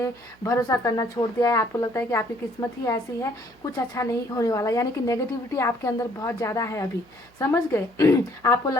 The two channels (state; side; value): noise; right; hum, 28 dB below the sound